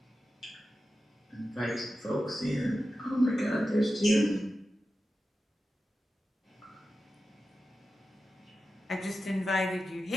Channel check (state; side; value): normal; both; correlation 0.92